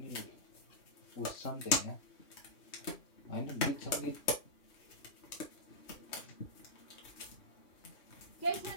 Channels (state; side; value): late; right; 3.2 ms